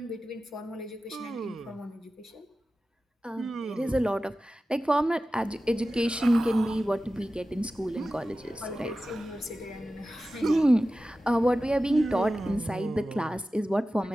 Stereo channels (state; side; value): normal; both; correlation 0.94